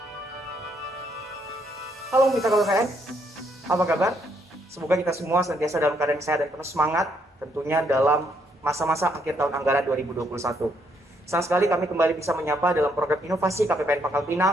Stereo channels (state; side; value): normal; both; correlation 0.72